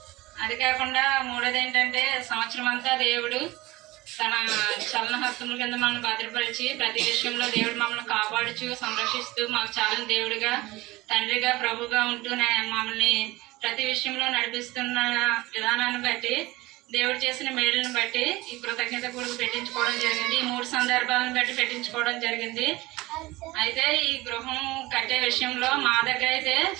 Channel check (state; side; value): quieter; left; 20.0 dB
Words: అది కాకుండా మూడోది ఏంటంటే సంవత్సరం అంతా దేవుడు తన చలన హస్తముల కింద మనల్ని భద్రపరిచి ప్రతి విషయంలో దేవుడు మమ్మల్ని కాపాడుచు సంరక్షిస్తూ మాకు చాలా దేవుడిగా, తండ్రిగా, ప్రభుగా ఉంటూ మమ్మల్ని ప్రతి విషయంలో నడిపిస్తున్న విధానాన్ని బట్టి, దేవుడు చేసిన మేలుని బట్టి ఈ కృతజ్ఞత కూడా పెట్టించుకోవడం జరిగింది. ఈ 3 సందర్భాలను బట్టి పెట్టించుకోవడం జరిగింది. అయితే ఈ గృహం కట్టే విషయంలో మా దగ్గర అయితే